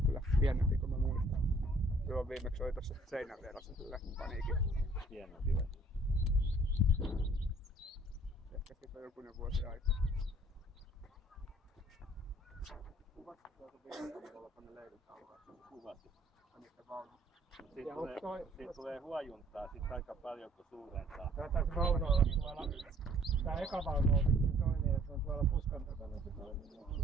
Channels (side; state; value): both; normal; correlation 0.58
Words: kyllä pienempi kuin mä muistan. Joo, viimeksi oli tossa seinän vieressä sille paniikin. Pienempi vai? Ehkä siitä on jokunen vuosi aikaa. Kuvatko tuolta vielä tuolla tonne leirintaulaan? Kuvasin. Niitä vaunuja. Siitä tulee huojuntaa sit aika paljon kun suurentaa. Tää vaunu olla tuolla. Tää eka vaunu on toinen ja se on tuolla puskan takana se toinen.